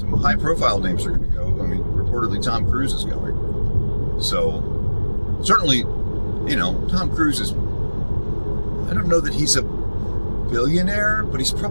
high-profile names are going to go. I mean, reportedly Tom Cruise is going. So, certainly, Tom Cruise is, I don't know that he's a billionaire, but he's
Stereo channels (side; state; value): both; inverted; correlation -1.00